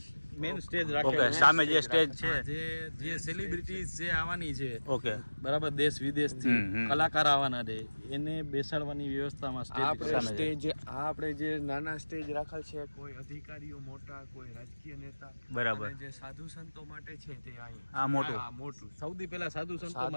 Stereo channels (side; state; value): both; inverted; correlation -1.00